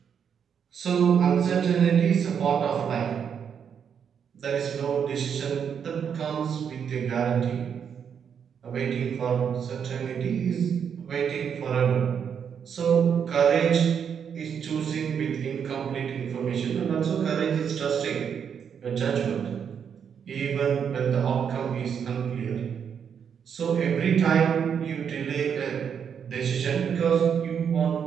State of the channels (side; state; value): left; quieter; 7.5 dB